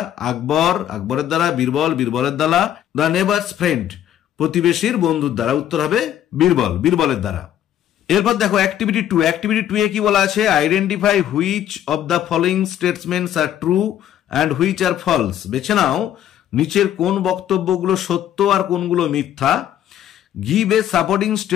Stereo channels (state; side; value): quieter; right; 11.0 dB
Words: আকবর, আকবরের দ্বারা। বীরবল, বীরবলের দ্বারা। দ্য নেবারস ফ্রেন্ড, প্রতিবেশীর বন্ধুর দ্বারা। উত্তর হবে বীরবল, বীরবলের দ্বারা। এরপর দেখো অ্যাক্টিভিটি 2। অ্যাক্টিভিটি 2 এ কি বলা আছে? Identify which of the following statements are true and which are false. বেছে নাও নিচের কোন বক্তব্যগুলো সত্য আর কোনগুলো মিথ্যা। Give a supporting